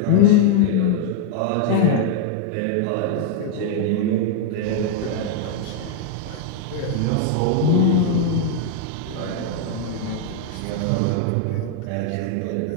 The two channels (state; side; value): different; both; correlation 0.00